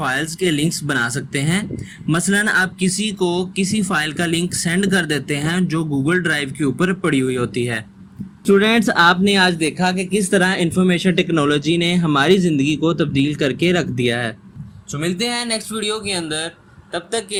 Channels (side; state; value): both; identical; correlation 1.00